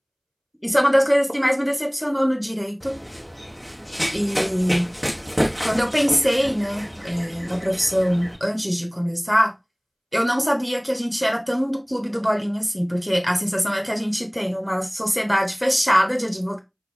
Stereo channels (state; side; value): identical; both; correlation 1.00